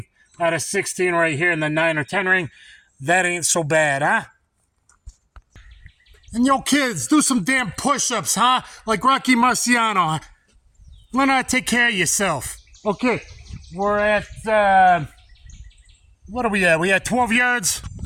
out of 16 right here in the 9 or 10 ring, that ain't so bad, huh? And yo, kids, do some damn push-ups, huh? Like Rocky Marciano. Learn how to take care of yourself. Okay, we're at What are we at? We at 12 yards.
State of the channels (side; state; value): both; identical; correlation 1.00